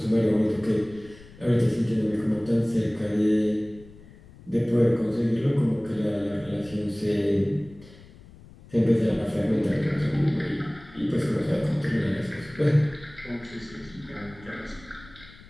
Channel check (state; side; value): noise; left; rumble, 22 dB below the sound